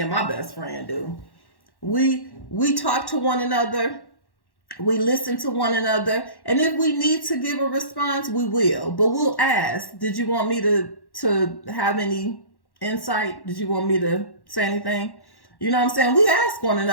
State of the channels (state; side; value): late; right; 1.1 ms